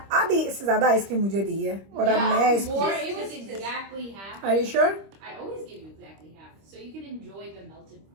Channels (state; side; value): late; left; 26 ms